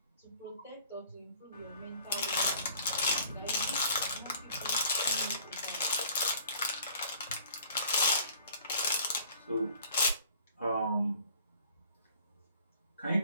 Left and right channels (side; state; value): both; inverted; correlation -0.54